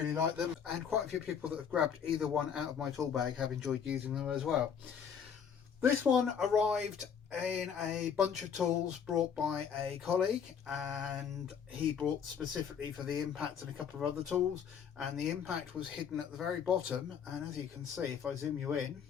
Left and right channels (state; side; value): quieter; right; 7.4 dB